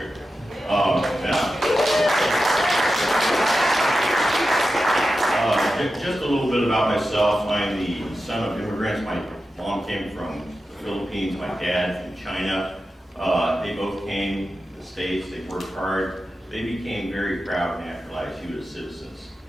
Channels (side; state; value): both; normal; correlation 0.92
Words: Just a little bit about myself. I'm the son of immigrants. My mom came from the Philippines, my dad from China. They both came to the States, they worked hard. They became very proud naturalized U.S. citizens.